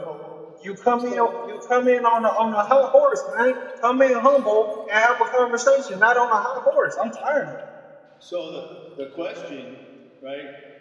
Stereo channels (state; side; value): identical; both; correlation 1.00